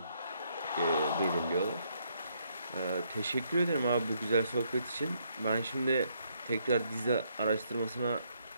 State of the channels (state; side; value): inverted; both; correlation -0.73